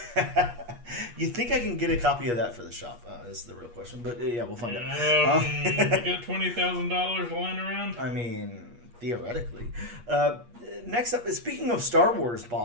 You think I can get a copy of that for the shop? Is the real question. But yeah, we'll find out. You got $20,000 lying around? I mean, theoretically. Next up, speaking of Star Wars,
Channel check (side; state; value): left; late; 8.4 ms